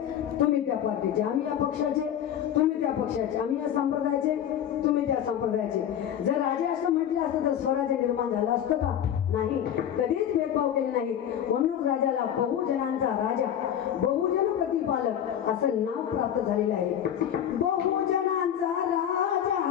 तुम्ही त्या पार्टीचे, आम्ही या पक्षाचे, तुम्ही त्या पक्षाचे, आम्ही या संप्रदायाचे, तुम्ही त्या संप्रदायाचे. जर राजे असं म्हटलं असतं तर स्वराज्य निर्माण झालं असतं का? नाही, कधीच भेदभाव केले नाही. म्हणून राजाला बहुजनांचा राजा, बहुजन प्रतिपालक असं नाव प्राप्त झालेलं आहे. बहुजनांचा राजा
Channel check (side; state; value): right; quieter; 9.9 dB